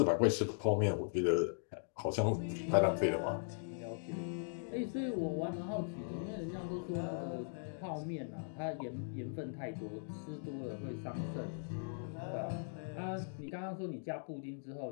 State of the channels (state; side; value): silent; right; digital silence